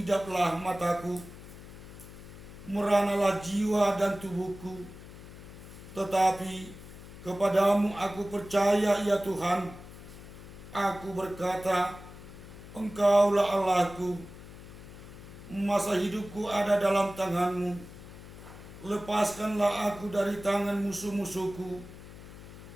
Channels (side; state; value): left; noise; hum, 16 dB below the sound